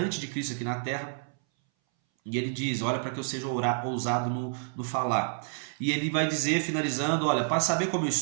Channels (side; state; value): left; silent; 59 dB below the other